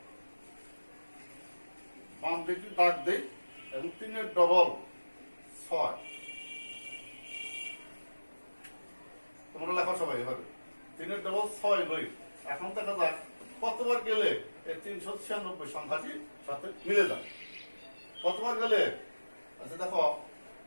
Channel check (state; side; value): inverted; both; correlation -1.00